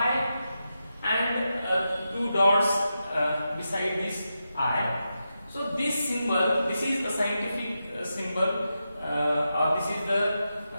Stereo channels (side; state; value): both; inverted; correlation -0.88